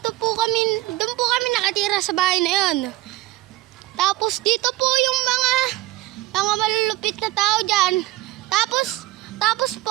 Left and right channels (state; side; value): quieter; left; 17.4 dB